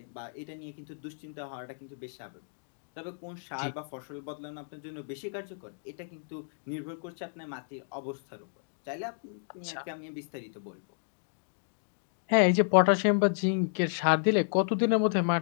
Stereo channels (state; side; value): silent; right; digital silence